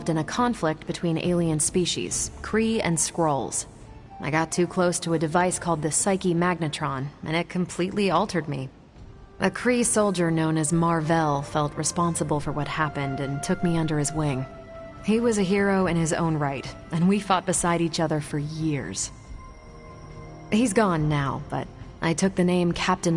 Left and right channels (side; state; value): both; identical; correlation 1.00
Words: in a conflict between alien species, Kree and Skrulls. I got too close to a device called the Psyche Magnetron, and it completely altered me. A Kree soldier known as Marvell felt responsible for what happened and took me under his wing. He was a hero in his own right, and we fought beside each other for years. He's gone now, but I took the name Captain